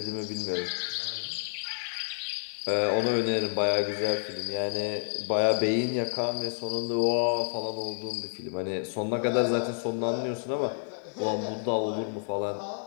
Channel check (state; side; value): silent; right; digital silence